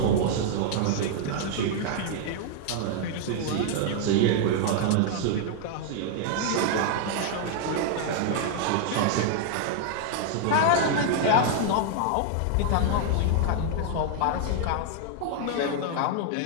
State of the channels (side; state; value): both; different; correlation 0.00